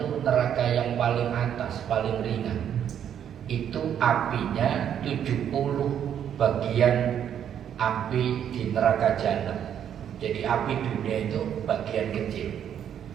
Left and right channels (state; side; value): quieter; left; 9.3 dB